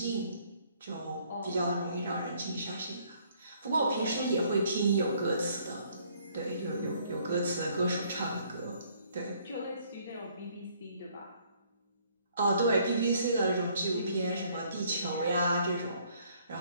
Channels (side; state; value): both; inverted; correlation -0.63